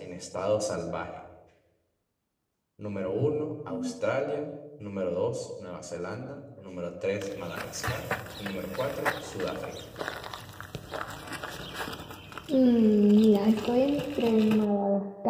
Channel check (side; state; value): both; identical; correlation 1.00